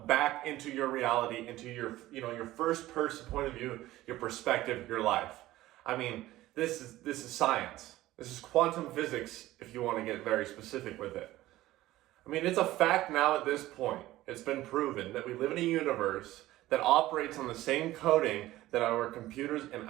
back into your reality, into your, your first person point of view, your perspective, your life. I mean, this is science. This is quantum physics, if you want to get very specific with it. I mean, it's a fact now at this point. It's been proven that we live in a universe that operates on the same coding that our computers and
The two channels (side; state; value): left; quieter; 16.1 dB